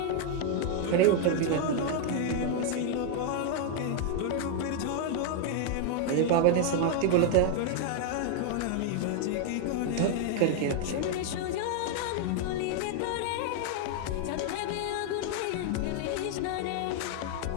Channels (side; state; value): both; different; correlation 0.00